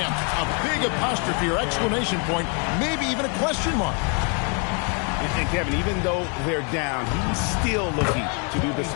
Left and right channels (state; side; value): quieter; right; 38.2 dB